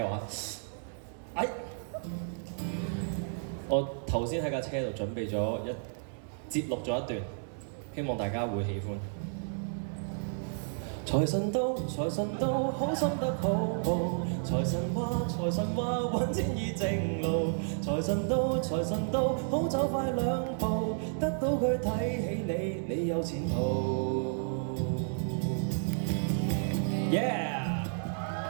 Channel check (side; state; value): left; silent; digital silence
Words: 話？我頭先喺架車度準備咗節錄咗一段，希望大家會喜歡。財神到，財神到，好心得好報。財神話，揾錢易正路。財神到，財神到，好走快兩步。得到佢睇起你，你有前途。Yeah！